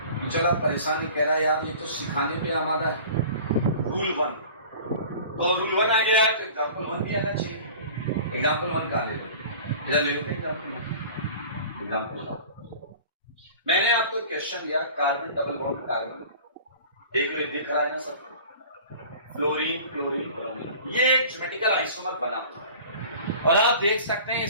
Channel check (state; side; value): inverted; both; correlation -0.42